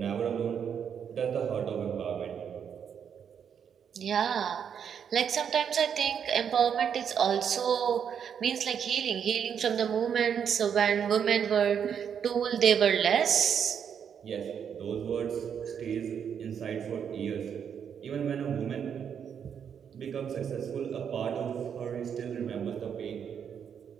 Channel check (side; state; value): left; quieter; 7.8 dB